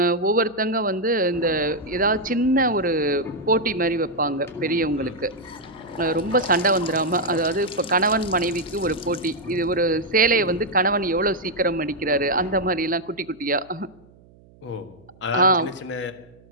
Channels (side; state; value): right; noise; hum, 27 dB below the sound